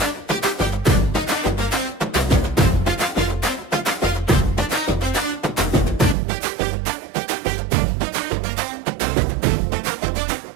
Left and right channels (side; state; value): left; drops out; at 6.2 s